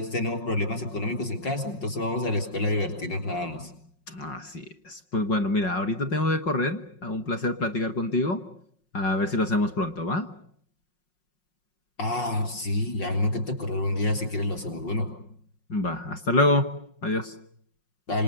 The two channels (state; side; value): late; right; 5.5 ms